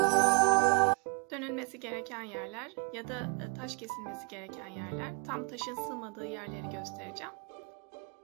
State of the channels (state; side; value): quieter; left; 32.8 dB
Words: Dönülmesi gereken yerler ya da taş kesilmesi gereken yerler, tam taşın sığmadığı yerleri göstereceğim.